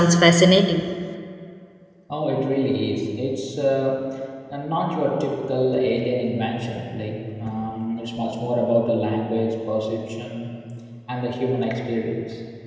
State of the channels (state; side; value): identical; both; correlation 1.00